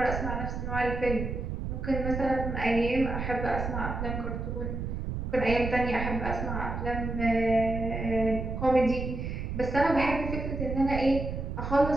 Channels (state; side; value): noise; right; rumble, 4 dB below the sound